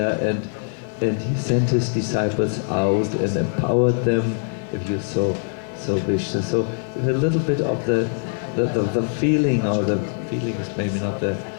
and he sent his disciples out and empowered them, if you so wish. So a little bit of the feeling, or the feeling is maybe not the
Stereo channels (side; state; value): right; silent; 64 dB below the other